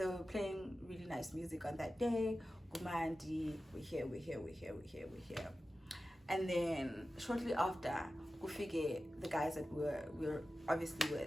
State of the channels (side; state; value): both; normal; correlation 0.94